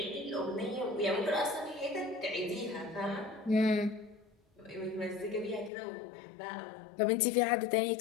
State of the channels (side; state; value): right; drops out; at 5.7 s